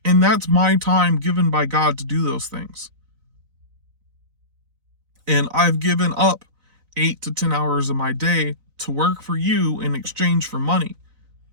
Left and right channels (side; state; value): left; late; 4.0 ms